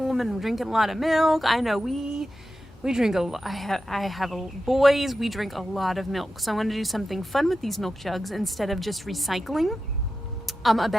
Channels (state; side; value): normal; both; correlation 0.91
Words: and we're drinking a lot of milk. I know we drink a lot. I have boys. We drink a lot of milk. So I want to do something fun with these milk jugs instead of just recycling. A